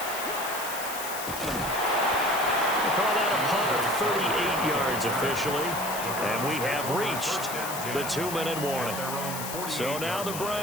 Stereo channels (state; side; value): noise; left; hiss, 7 dB below the sound